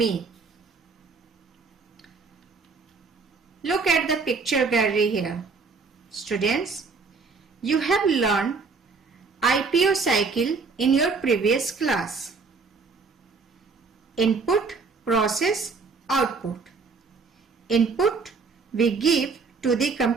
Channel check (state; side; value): quieter; left; 4.6 dB